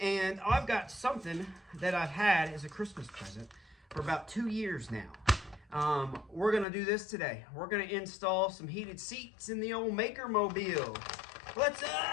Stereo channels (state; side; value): drops out; right; at 6.7 s